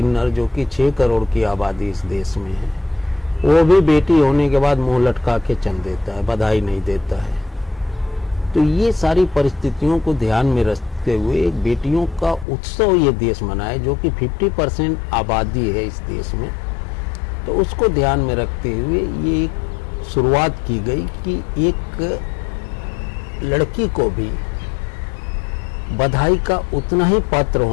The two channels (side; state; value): right; drops out; at 12.5 s